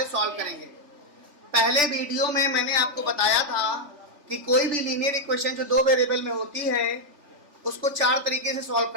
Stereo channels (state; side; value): late; left; 3.5 ms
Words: सॉल्व करेंगे। पहले वीडियो में मैंने आपको बताया था कि कोई भी लीनियर इक्वेशन जो दो वेरिएबल में होती है उसको चार तरीके से सॉल्व